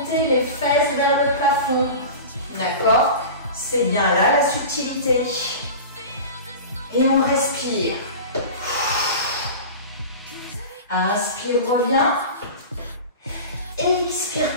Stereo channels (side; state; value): both; inverted; correlation -0.32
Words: les fesses vers le plafond. D'accord? C'est bien là la subtilité. Et on respire. Inspire, reviens. Expire,